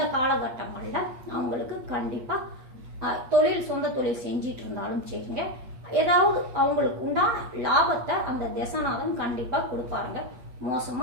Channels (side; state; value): left; late; 8.4 ms